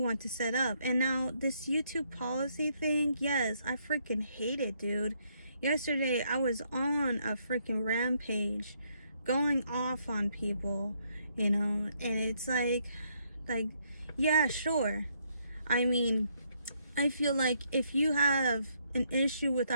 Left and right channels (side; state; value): both; inverted; correlation -0.73